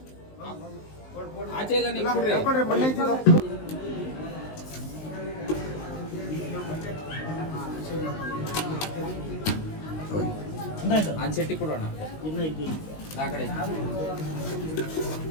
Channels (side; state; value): right; late; 19 ms